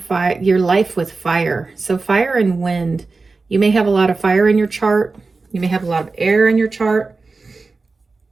life with fire. So fire and wind. You may have a lot of fire in your chart. You may have a lot of air in your chart.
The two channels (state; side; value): quieter; left; 3.9 dB